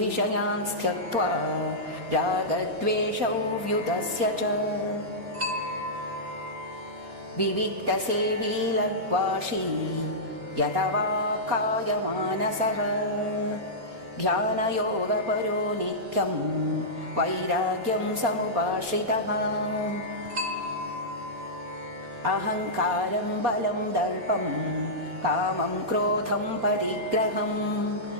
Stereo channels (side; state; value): left; late; 4.3 ms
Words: त्यक्त्वा रागद्वेषौ व्युतस्य च विविक्तसेवी लग्वाशी यतवा कायमानसः ध्यानयोगपरो नित्यं वैराग्यं समुपाश्रितः अहङ्कारं बलं दर्पं कामं क्रोधं परिग्रहं